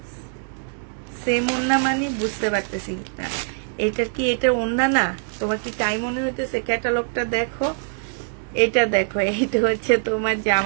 সেম ওন্না মানে বুঝতে পারতেছি না, এটা কি এটা ওন্না না? তোমার কি তাই মনে হইতেছে? ক্যাটালগটা দেখো, এটা দেখো, এইটা হচ্ছে তোমার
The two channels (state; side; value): silent; left; digital silence